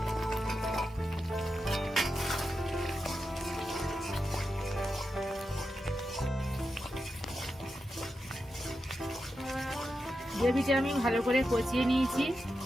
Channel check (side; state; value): both; normal; correlation 0.88